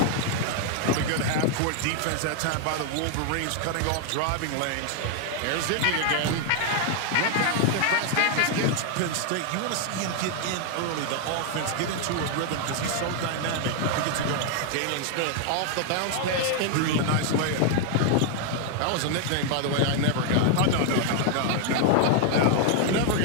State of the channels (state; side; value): different; both; correlation 0.00